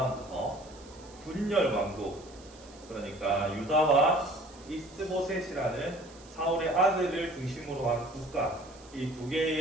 분열 왕국, 그러니까 유다와 이스보셋이라는 사울의 아들을 중심으로 한 국가, 이 두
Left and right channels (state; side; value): noise; right; hiss, 23 dB below the sound